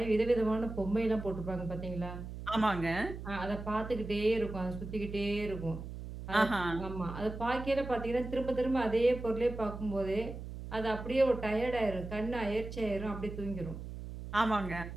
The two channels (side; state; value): right; noise; hum, 9 dB below the sound